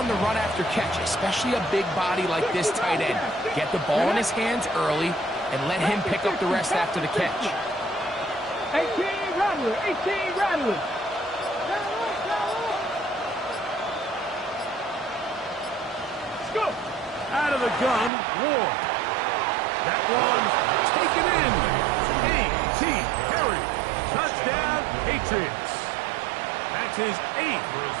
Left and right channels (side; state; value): left; drops out; at 18.1 s